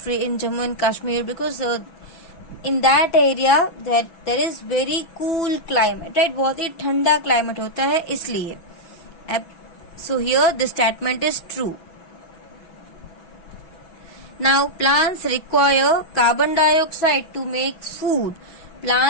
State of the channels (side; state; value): right; late; 6.1 ms